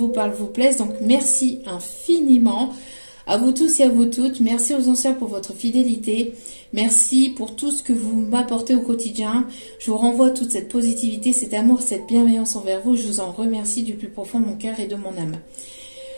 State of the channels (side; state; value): both; inverted; correlation -1.00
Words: parlent, vous plaisent, donc merci infiniment. À vous tous et à vous toutes, merci aux anciens pour votre fidélité, merci pour tout ce que vous m'apportez au quotidien. Je vous renvoie toute cette positivité, cet amour, cette bienveillance envers vous. Je vous en remercie du plus profond de mon cœur et de mon âme.